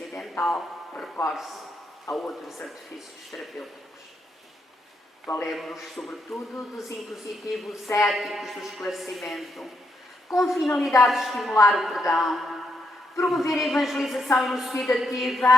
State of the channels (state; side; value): normal; both; correlation 0.79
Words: recorre-se a outros artifícios terapêuticos. Valemos-nos, sobretudo, dos impositivos éticos do esclarecimento, com finalidade de estimular o perdão, promover a evangelização